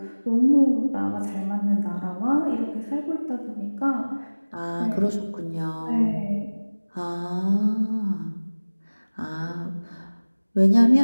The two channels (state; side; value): inverted; both; correlation -1.00